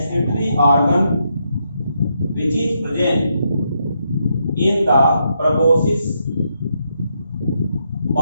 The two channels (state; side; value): inverted; both; correlation -0.79